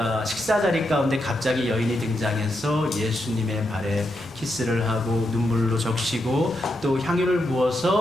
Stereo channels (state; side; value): normal; both; correlation 0.83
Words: 식사 자리 가운데 갑자기 여인이 등장해서 예수님의 발에 키스를 하고 눈물로 적시고 또 향유를